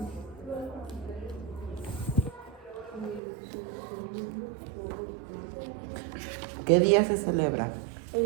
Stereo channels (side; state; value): left; drops out; at 3.2 s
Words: ¿Qué día se celebra?